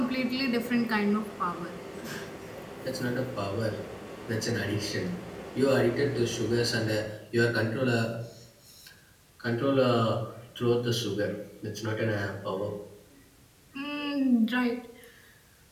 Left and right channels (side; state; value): both; identical; correlation 1.00